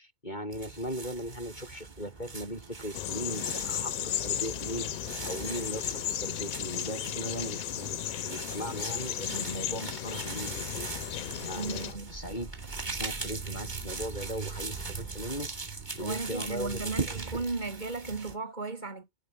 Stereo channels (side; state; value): right; late; 2.2 ms